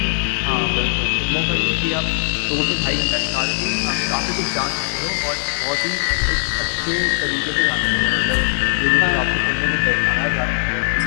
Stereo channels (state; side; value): silent; right; digital silence